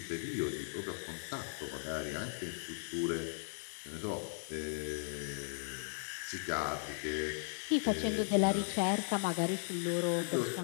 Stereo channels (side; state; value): right; silent; digital silence